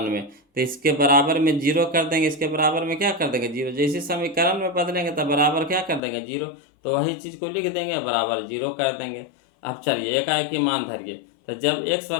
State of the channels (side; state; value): right; drops out; at 6.0 s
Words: में, तो इसके बराबर में 0 कर देंगे, इसके बराबर में क्या कर देंगे 0, जैसे समीकरण में बदलेंगे तब बराबर क्या कर देंगे 0, तो वही चीज़ को लिख देंगे बराबर 0 कर देंगे। अब चलिए एकाएक ही मान धरिए, तो जब x